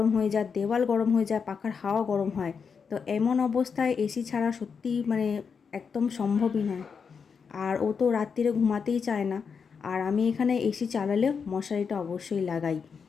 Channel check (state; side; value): quieter; right; 6.0 dB